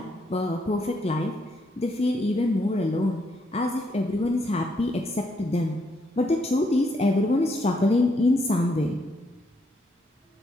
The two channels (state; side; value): normal; both; correlation 0.75